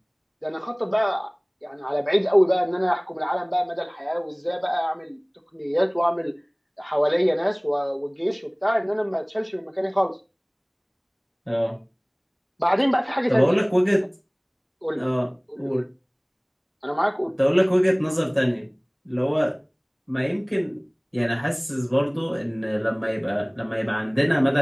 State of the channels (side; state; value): both; identical; correlation 1.00